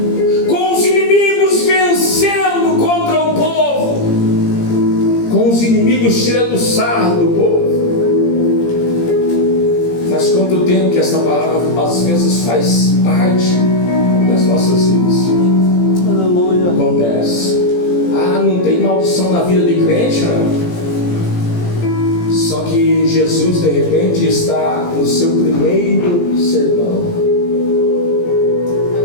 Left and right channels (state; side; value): late; right; 17 ms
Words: com os inimigos vencendo contra o povo, com os inimigos tirando sarro do povo. Faz quanto tempo que essa palavra às vezes faz parte das nossas vidas? Aleluia. Acontece. Ah, não tem maldição na vida de crente, não. Só que Jesus de repente está no seu primeiro sermão.